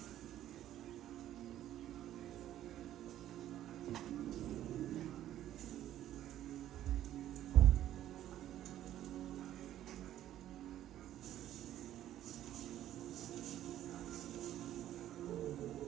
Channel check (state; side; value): quieter; left; 12.4 dB